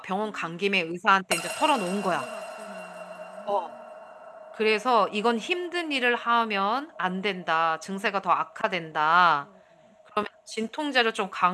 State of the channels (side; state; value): both; identical; correlation 1.00